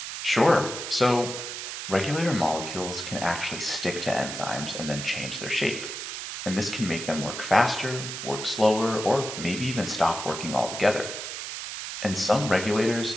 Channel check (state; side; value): noise; right; hiss, 7 dB below the sound